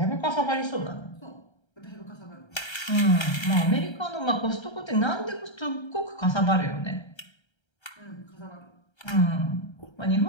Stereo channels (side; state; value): right; late; 1.3 ms